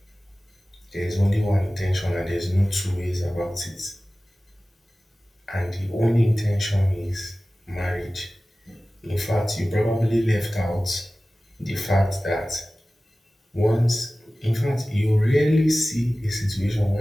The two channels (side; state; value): both; normal; correlation 0.97